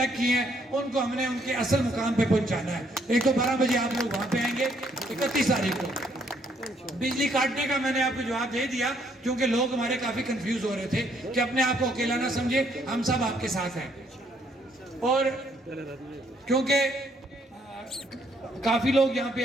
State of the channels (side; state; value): both; normal; correlation 0.68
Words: کیے ہیں ان کو ہم نے ان کے اصل مقام پہ پہنچانا ہے. ایک تو 12 بجے آپ لوگ وہاں پہ آئیں گے 31 تاریخ کو. بجلی کاٹنے کا میں نے آپ کو جواب دے دیا کیونکہ لوگ ہمارے کافی کنفیوز ہو رہے تھے کہ اپنے آپ کو اکیلا نہ سمجھے, ہم سب آپ کے ساتھ ہیں. اور کیونکہ کافی لوگ یہاں پہ